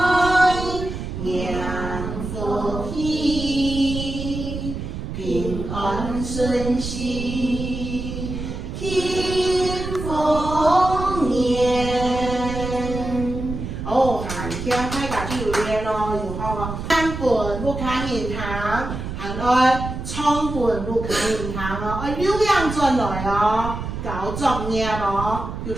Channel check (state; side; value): noise; right; rumble, 6 dB below the sound